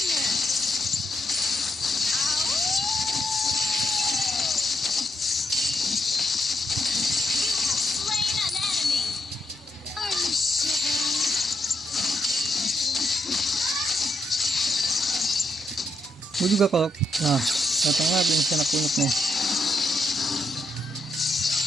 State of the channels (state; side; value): normal; both; correlation 0.80